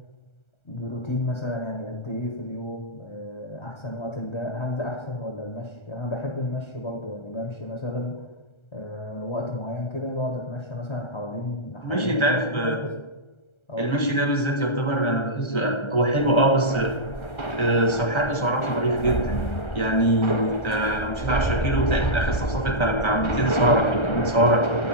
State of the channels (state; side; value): late; right; 1.3 ms